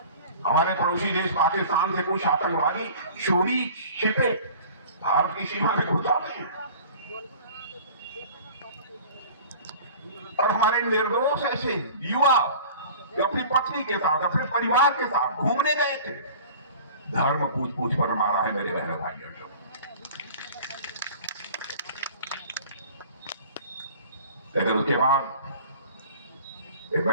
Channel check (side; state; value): both; inverted; correlation -0.43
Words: हमारे पड़ोसी देश पाकिस्तान से कुछ आतंकवादी चोरी छिपे भारत की सीमा में घुस आते हैं, और हमारे निर्दोष ऐसे युवा जो अपनी पत्नी के साथ, अपने परिवार के साथ घूमने गए थे, धर्म पूछ पूछ पर मारा है मेरे बहनों भाइयों। लेकिन उसके बाद एक